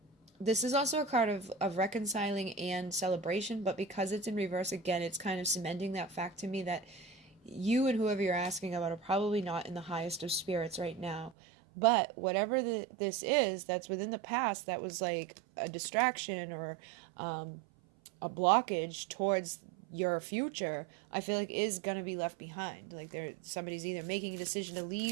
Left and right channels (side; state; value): left; drops out; at 11.3 s